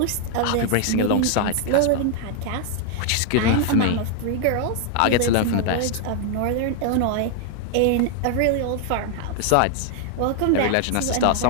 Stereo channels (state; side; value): different; both; correlation 0.00